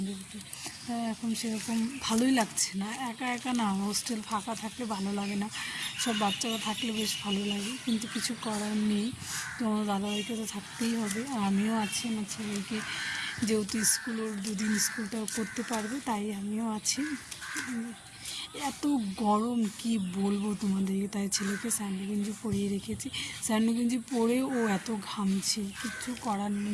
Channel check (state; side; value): identical; both; correlation 1.00